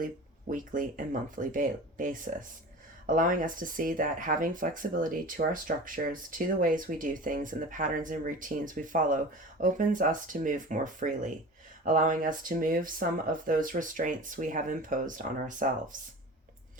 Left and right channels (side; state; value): both; normal; correlation 0.36